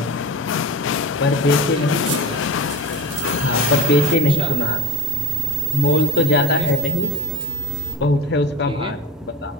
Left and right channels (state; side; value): normal; both; correlation 0.37